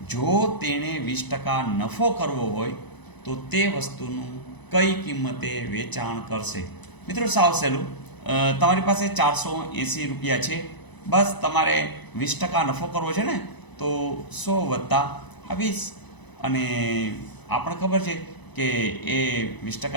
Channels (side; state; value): right; late; 1.0 ms